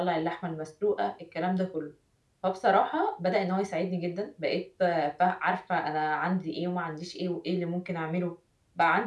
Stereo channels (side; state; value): both; identical; correlation 1.00